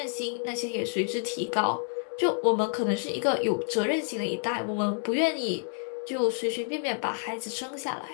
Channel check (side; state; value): right; silent; 56 dB below the other